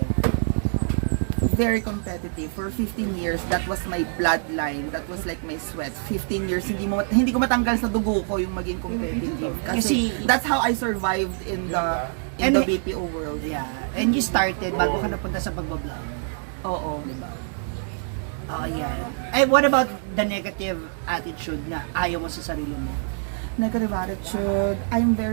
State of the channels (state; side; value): silent; left; 61 dB below the other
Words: Very competitive. For 15 years, that was my bloodline. That was like my sweat. 15 years, hindi ko matanggal sa dugo ko yung maging competitive. Kasi that's how I survived in the BPO world. Yeah. And you started bago ka napunta sa pagbablog. Oo. Diba? Oh, yeah. And what about the negative attitude na ayaw mo sa sarili mo? Negative attitude. I'm